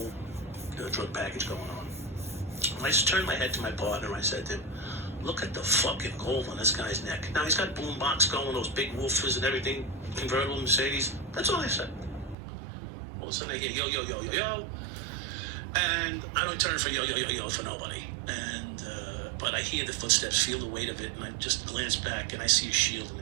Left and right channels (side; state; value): left; drops out; at 12.4 s